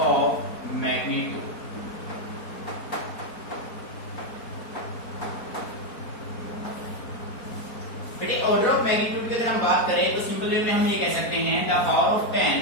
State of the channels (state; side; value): late; right; 4.4 ms